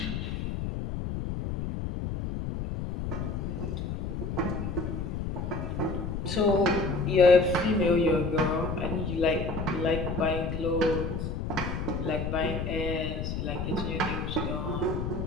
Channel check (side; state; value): left; noise; rumble, 3 dB below the sound